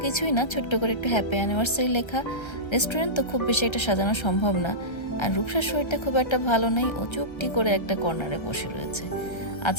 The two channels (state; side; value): late; right; 1.3 ms